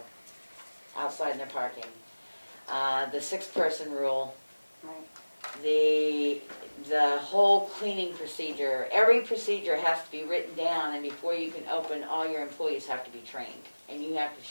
outside in their parking? The 6-person rule, the whole cleaning procedure, every procedure has to be written down, and before you can open, all your employees have to be trained, and you have to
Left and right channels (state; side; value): inverted; both; correlation -1.00